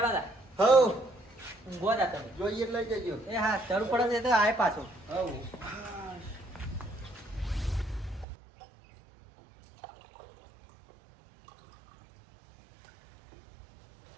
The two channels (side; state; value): left; drops out; at 8.2 s